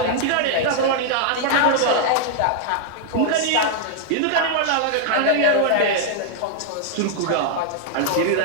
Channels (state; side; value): different; both; correlation 0.00